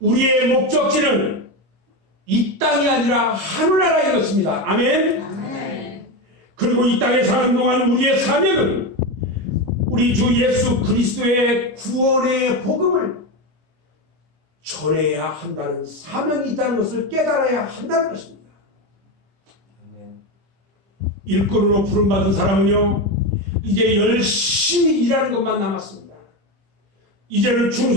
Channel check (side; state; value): left; late; 25 ms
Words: 목적지는 이 땅이 아니라 하늘나라인 것입니다. 아멘. 아멘. 그리고 이 땅에 사는 동안 우리의 사명은 우리 주 예수 그리스도의 구원의 복음을 전해야 한다는 사명이 있다는 것을 깨달아야 한다는 것입니다. 일꾼으로 부름받은 사람은요 이제 열심히 일하는 것만 남았습니다. 이제는